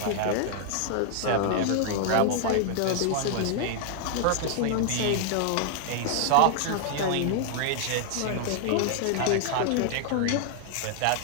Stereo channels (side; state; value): both; different; correlation 0.00